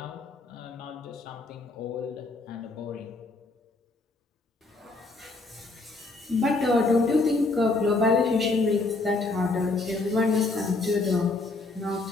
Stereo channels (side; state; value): right; quieter; 3.4 dB